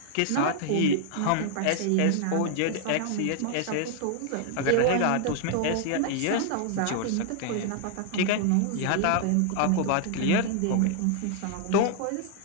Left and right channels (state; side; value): different; both; correlation 0.00